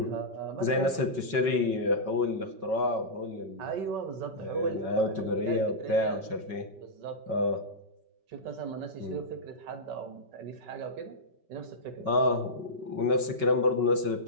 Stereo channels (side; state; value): left; late; 5.3 ms